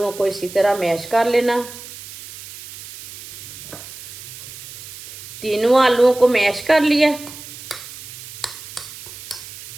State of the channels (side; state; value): right; noise; hiss, 14 dB below the sound